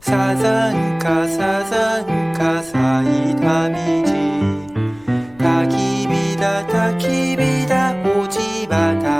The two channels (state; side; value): noise; left; rumble, 28 dB below the sound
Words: サザンカサザンカ咲いた道焚き火だ焚き火だ落ち葉